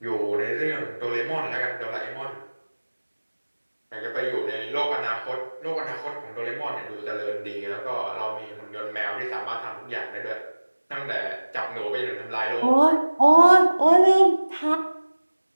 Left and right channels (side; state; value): both; inverted; correlation -1.00